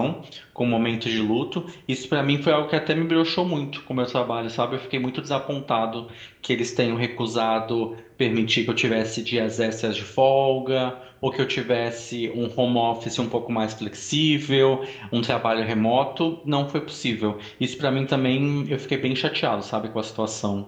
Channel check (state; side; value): identical; both; correlation 1.00